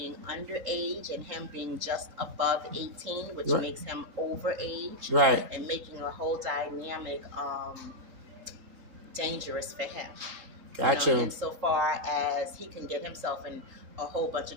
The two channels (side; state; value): left; late; 3.8 ms